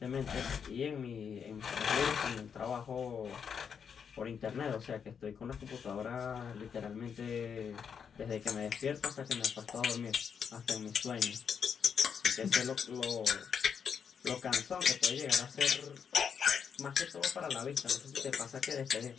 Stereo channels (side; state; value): right; quieter; 7.0 dB